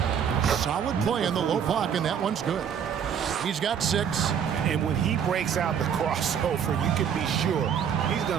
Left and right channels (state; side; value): quieter; left; 8.0 dB